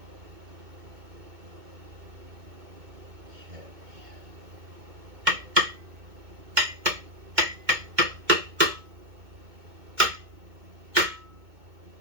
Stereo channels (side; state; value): left; late; 2.2 ms